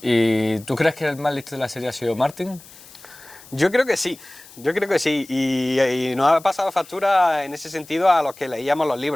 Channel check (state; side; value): noise; left; hiss, 21 dB below the sound